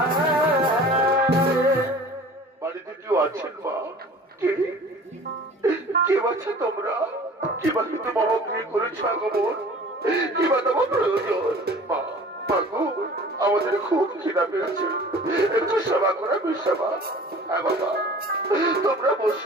বাড়িতে কেউ আছেন মা? কেউ আছে তোমরা? কিবা কিন্তু বাবা গৃহ করেছ আগমন, কিবা তোমার প্রয়োজন? মা মাগো, আমাদের খুব খিদা পেয়েছে, একটু সেবা করা সেবা। হ্যাঁ বাবা, তোমরা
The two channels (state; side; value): normal; both; correlation 0.45